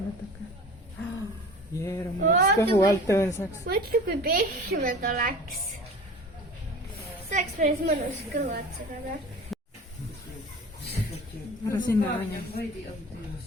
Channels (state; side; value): normal; both; correlation 0.39